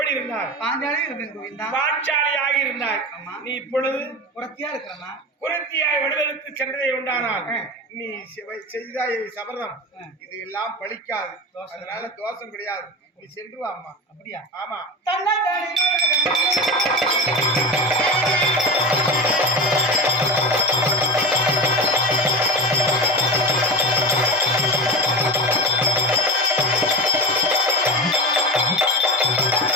இருந்தாய்? பாஞ்சாலியாக இருந்தேன் கோவிந்தா. பாஞ்சாலியாக இருந்தாய். நீ இப்பொழுது குரத்தியா இருக்கிறமா? குரத்தியாய் வடிவெடுத்து சென்றதே உண்டானால் நீ செய்தாய் சபதம் இது எல்லாம் பலிக்காது. அதனால தோஷம் கிடையாது. நீ சென்று வா அம்மா. அப்படியா? ஆமா.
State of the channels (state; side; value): normal; both; correlation 0.26